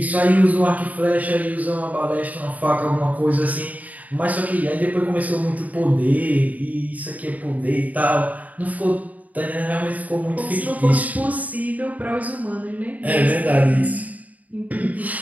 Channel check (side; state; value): left; late; 0.074 ms